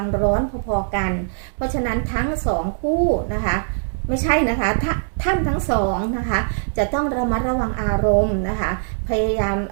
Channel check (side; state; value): left; silent; 65 dB below the other